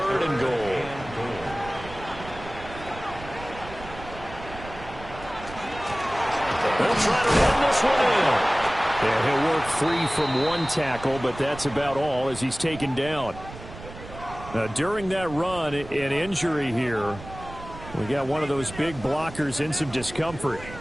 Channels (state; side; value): noise; right; rumble, 14 dB below the sound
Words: and goal. They'll try to run this one in. Yeah, he'll work free from one tackle, but that's about all as he's taken down. Now, during that run, an injury here. We got one of those big blockers in some discomfort.